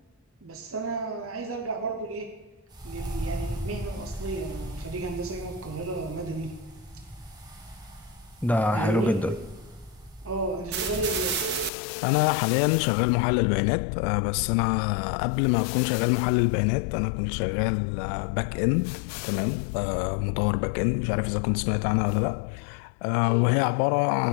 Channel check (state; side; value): drops out; right; at 11.7 s